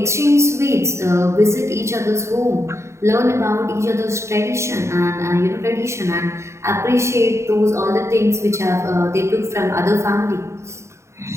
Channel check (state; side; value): late; left; 0.14 ms